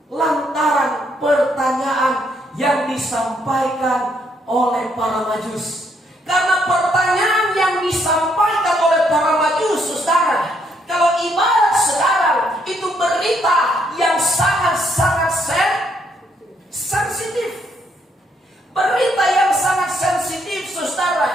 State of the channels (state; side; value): normal; both; correlation 0.72